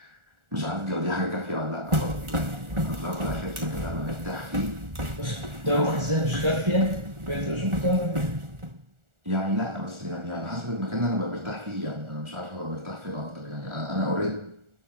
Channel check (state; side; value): late; left; 1.4 ms